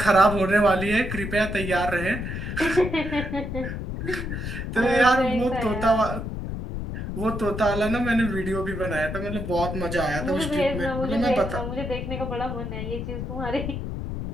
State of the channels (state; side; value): noise; left; rumble, 5 dB below the sound